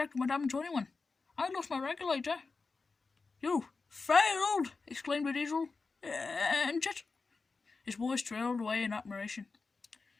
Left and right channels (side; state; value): right; quieter; 4.3 dB